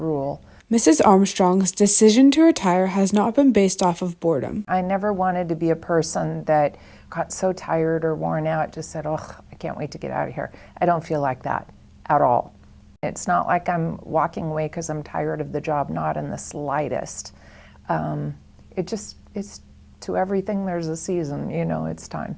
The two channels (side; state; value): both; identical; correlation 1.00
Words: Mrs. Armstrong's decision to retire has not been based off of boredom. I never wanted to be a person that got so tired or worn out, just said, oh, I can't wait to get out of here. I don't feel like that at all. It's not like I'm walking away because I'm tired of the job, not in the slightest. It's to everything there's a season, it's time.